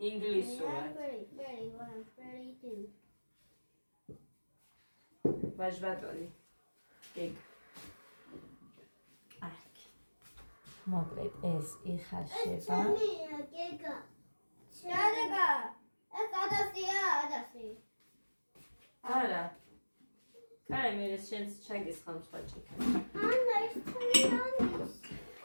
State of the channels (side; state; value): both; inverted; correlation -1.00